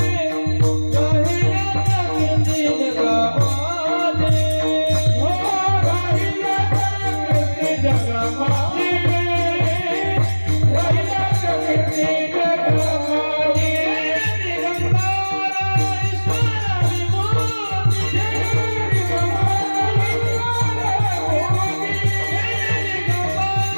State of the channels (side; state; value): both; inverted; correlation -1.00